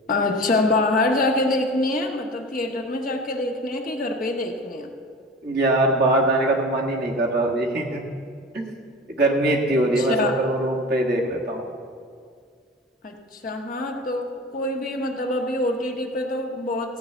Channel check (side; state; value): both; normal; correlation 0.35